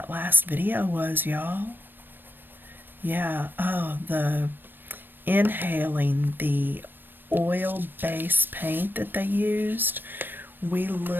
last video was, y'all. Yeah, oh, the inhaling the oil-based paint that they used. We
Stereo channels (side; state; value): left; late; 0.094 ms